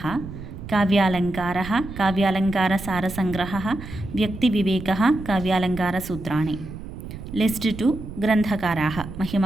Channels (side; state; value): right; noise; rumble, 11 dB below the sound